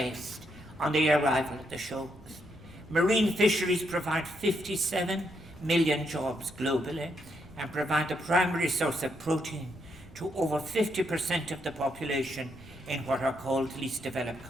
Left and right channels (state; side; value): noise; right; rumble, 20 dB below the sound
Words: on the arrival of the shoals. Marine fisheries provide 57 million jobs globally and provide the primary source of protein to over 50% of the population in what are called least developed